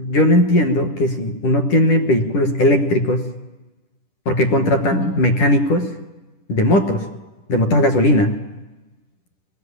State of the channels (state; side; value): late; right; 10 ms